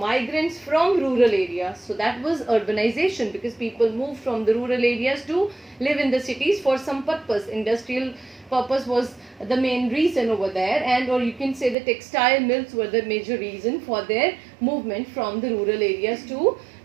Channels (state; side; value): drops out; left; at 11.8 s